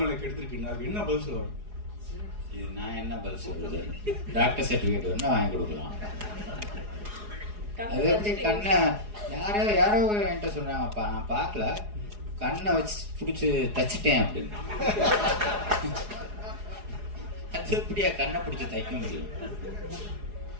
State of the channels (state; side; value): late; left; 4.8 ms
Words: எடுத்திருக்கீங்க. அதுக்கு என்ன பதில் சொல்லுவாங்க? இது நான் என்ன பதில் சொல்றது? டாக்டர் சர்டிபிகேட் வேணா வாங்கி கொடுக்கலாம். அது எப்படி கண்ணை யாரோ என்கிட்ட சொன்னாங்கப்பா, நான் பார்க்கல, கண்ணை வச்சு பிடிச்சி தச்சிட்டேன் அப்படின்னு. அது எப்படியா கண்ணை பிடிச்சி தைக்க முடியும்?